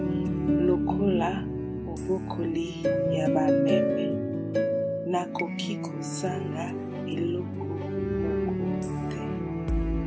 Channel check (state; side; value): identical; both; correlation 1.00